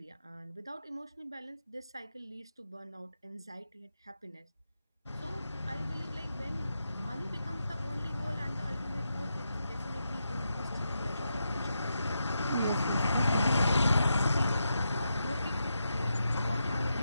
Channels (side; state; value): both; inverted; correlation -0.85